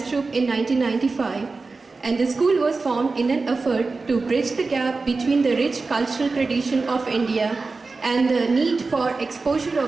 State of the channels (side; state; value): left; quieter; 4.0 dB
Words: Troupe in 1995, and the school was formed in an effort to bridge the gap between the rich cultural tradition of India and the need for exposure